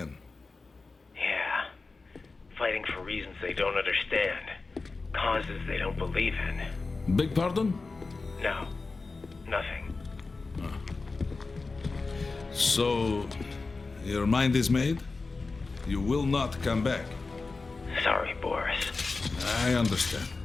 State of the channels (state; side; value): quieter; right; 3.9 dB